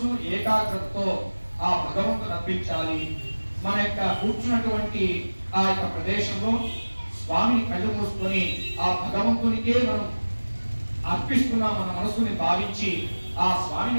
ఏకాగ్రతతో ఆ భగవంతుని అర్పించాలి. మన యొక్క కూర్చున్నటువంటి ఆ యొక్క ప్రదేశంలో స్వామిని కళ్ళు మూసుకొని ఆ భగవంతునికే మనం అర్పిస్తున్నాం మన మనసుని భావించి ఆ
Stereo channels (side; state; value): both; inverted; correlation -1.00